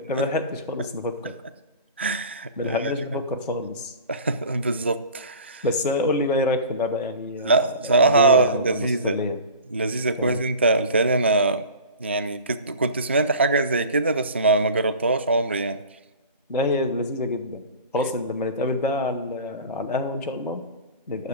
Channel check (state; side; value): inverted; both; correlation -0.39